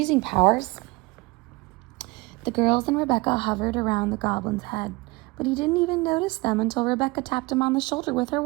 powers. The girls and Rebecca hovered around the goblin's head, but he didn't even notice them until Rebecca tapped him on the shoulder with her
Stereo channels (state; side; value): quieter; left; 23.5 dB